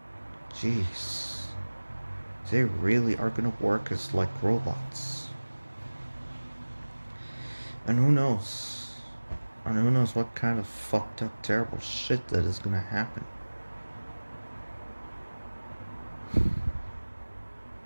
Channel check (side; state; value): both; inverted; correlation -1.00